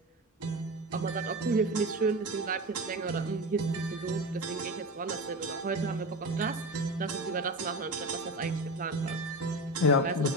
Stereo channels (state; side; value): normal; both; correlation 0.25